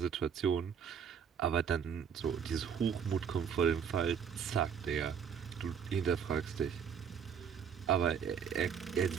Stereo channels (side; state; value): left; quieter; 7.4 dB